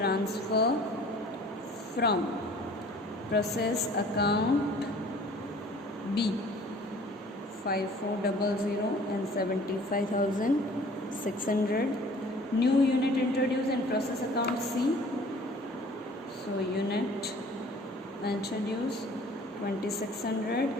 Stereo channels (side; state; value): both; normal; correlation 0.50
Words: from process account B 5400 and 75,600. New unit introduced in process account C. So unit introduced